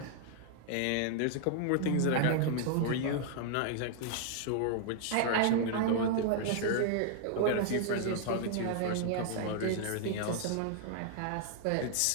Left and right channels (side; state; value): both; different; correlation -0.01